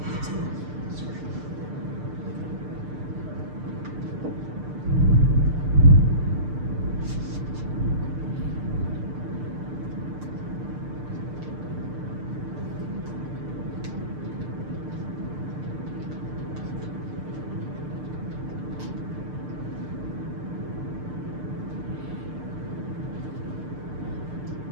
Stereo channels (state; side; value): late; left; 6.7 ms